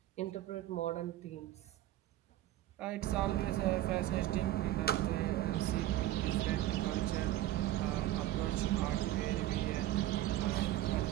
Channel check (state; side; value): quieter; left; 14.4 dB